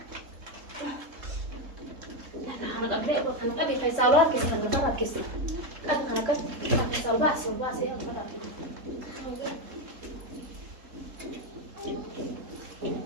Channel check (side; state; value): left; late; 3.7 ms